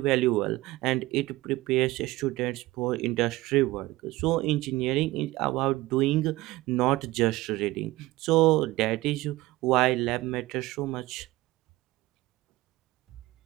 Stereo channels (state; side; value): quieter; left; 18.8 dB